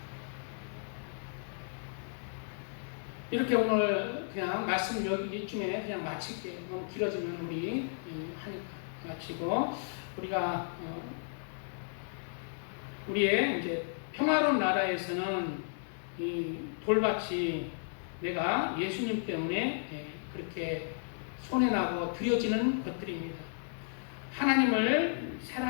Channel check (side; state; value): right; silent; digital silence